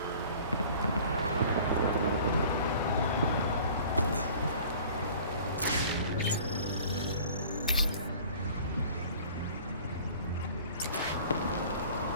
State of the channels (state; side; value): inverted; both; correlation -0.47